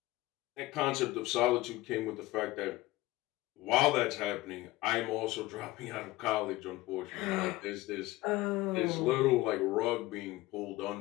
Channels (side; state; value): right; quieter; 18.6 dB